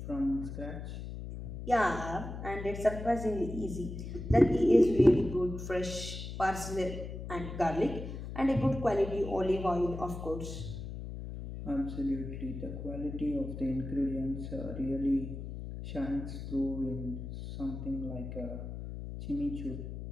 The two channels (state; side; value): noise; left; hum, 8 dB below the sound